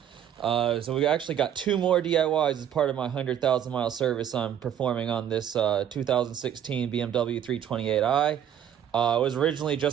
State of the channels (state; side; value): quieter; left; 9.8 dB